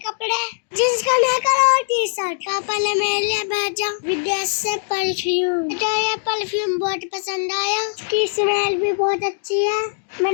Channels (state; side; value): silent; right; digital silence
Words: कपड़े, जींस का नेकर और टी शर्ट। पापा ने मेरे लिए भेजा विदेश से परफ्यूम। मुझे ये परफ्यूम बहुत पसंद आया, इसकी स्मेल भी बहुत अच्छी है।